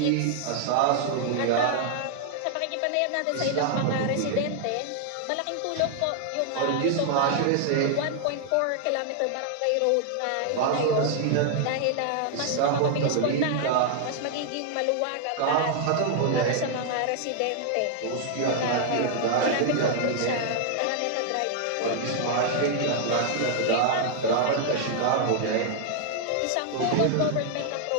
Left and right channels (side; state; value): both; different; correlation 0.00